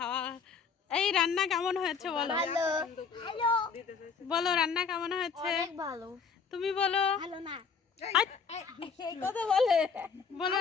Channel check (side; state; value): right; quieter; 5.7 dB